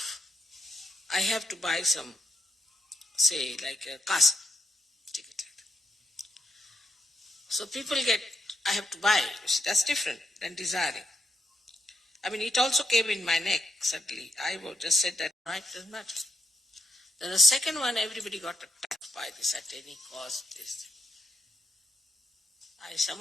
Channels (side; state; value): both; normal; correlation 0.79